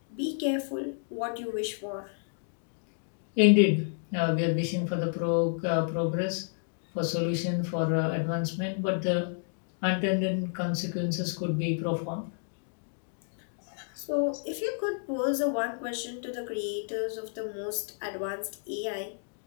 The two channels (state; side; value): silent; right; digital silence